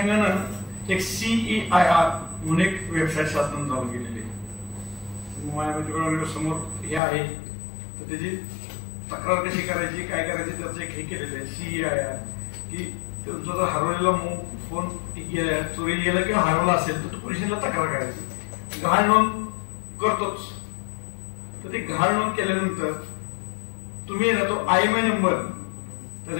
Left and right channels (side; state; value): right; drops out; at 7.0 s